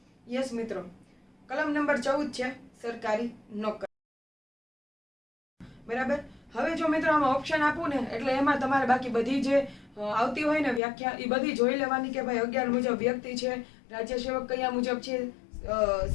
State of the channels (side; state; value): right; drops out; at 10.8 s